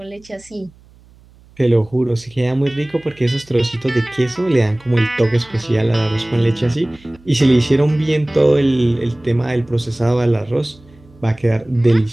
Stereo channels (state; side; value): noise; right; hum, 27 dB below the sound